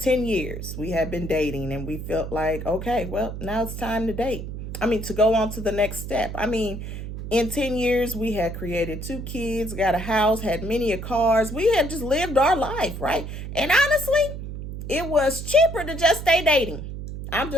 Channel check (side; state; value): right; noise; hum, 8 dB below the sound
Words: years. We had been dating, and we felt like, okay, well, now it's time to date. To go on to the next step. In 10 years, we had created 2 kids, got a house, had many cars. We had just lived our life, right? And honestly, it was cheaper to just stay dating. I'm